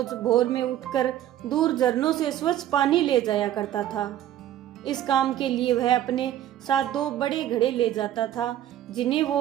भोर में उठकर दूर झरनों से स्वच्छ पानी ले जाया करता था। इस काम के लिए वह अपने साथ दो बड़े घड़े ले जाता था, जिन्हें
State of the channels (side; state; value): left; quieter; 12.0 dB